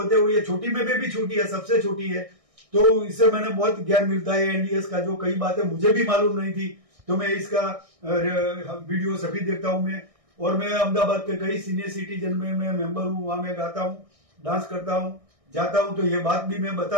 हुए, छोटी में भी छोटी है, सबसे छोटी है, तो इससे मैंने बहुत ज्ञान मिलता है एनडीएस का। जो कई बातें मुझे भी मालूम नहीं थी, तो मैं इसका वीडियो सभी देखता हूँ मैं। और मैं अहमदाबाद के कई सीनियर सिटीजन में मैं मेंबर हूँ, वहां मैं गाता हूँ, डांस करता हूँ, जाता हूँ। तो ये बात भी मैं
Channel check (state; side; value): late; left; 1.6 ms